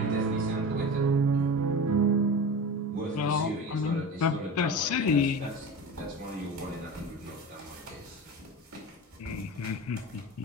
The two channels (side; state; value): both; normal; correlation 0.30